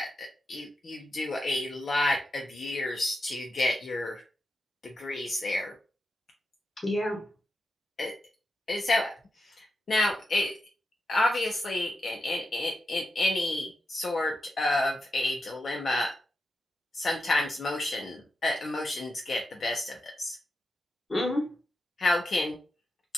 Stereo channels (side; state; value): both; normal; correlation 0.87